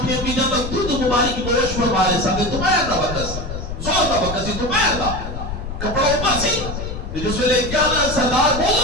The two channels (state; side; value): noise; left; rumble, 7 dB below the sound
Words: امی جان تک دودھ مبارک کی گوشت فرما رہے سکتے دوپہر کا وقت زور کا وقت سی, دوپہر کا کپڑا اوپر سی. جس ویلے کیا نا سردار